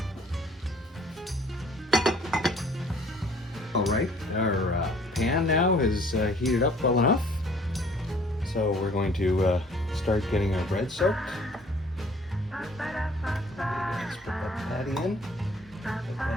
All right, our pan now is heated up well enough. So we're going to start getting our bread soaked. Let's put that patty in. Get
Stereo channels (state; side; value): normal; both; correlation 0.56